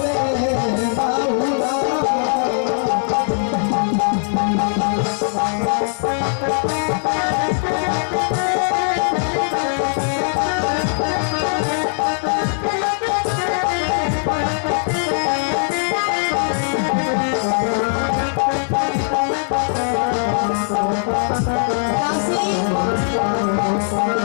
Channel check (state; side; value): silent; right; digital silence